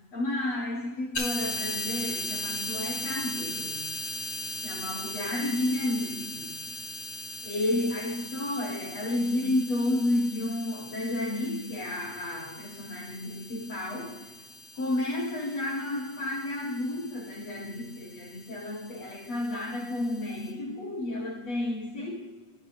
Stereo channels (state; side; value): late; right; 8.2 ms